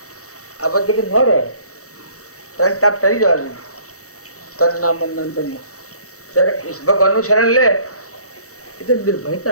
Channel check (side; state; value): right; late; 0.65 ms